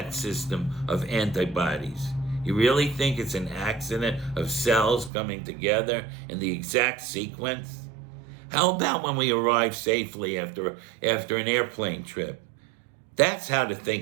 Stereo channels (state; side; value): drops out; left; at 5.1 s